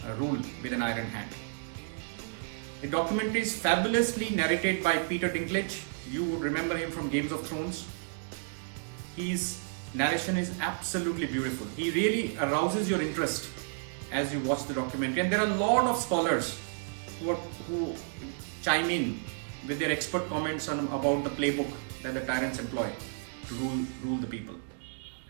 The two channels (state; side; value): silent; left; digital silence